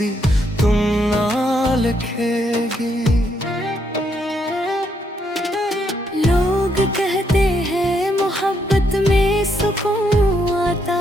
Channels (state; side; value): normal; both; correlation 0.75